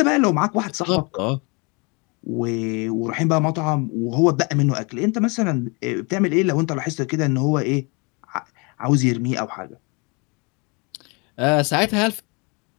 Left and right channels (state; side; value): quieter; right; 30.6 dB